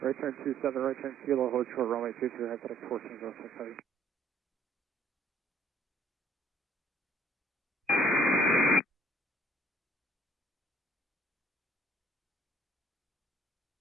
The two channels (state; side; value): normal; both; correlation 0.59